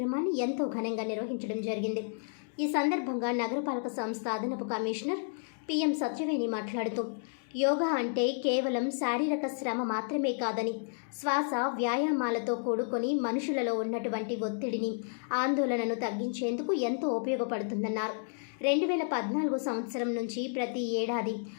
ఎంతో ఘనంగా నిర్వహించడం జరిగింది. ఈ సందర్భంగా నగరపాలక సంస్థ అదనపు కమిషనర్ పిఎం సత్యవేణి మాట్లాడుతూ, యోగా అంటే కేవలం శారీరక శ్రమ మాత్రమే కాదని, శ్వాస వ్యాయామాలతో కూడుకొని మనుషులలో ఉన్నటువంటి ఒత్తిడిని, ఆందోళనను తగ్గించేందుకు ఎంతో ఉపయోగపడుతుందన్నారు. 2014 సంవత్సరం నుంచి ప్రతి ఏడాది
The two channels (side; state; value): right; silent; digital silence